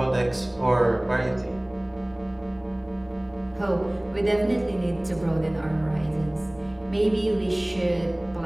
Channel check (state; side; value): noise; right; hum, 27 dB below the sound